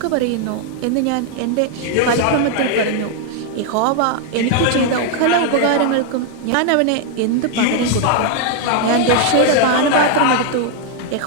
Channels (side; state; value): both; different; correlation 0.00